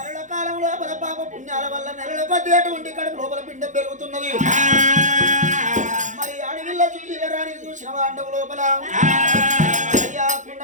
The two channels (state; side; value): late; left; 0.36 ms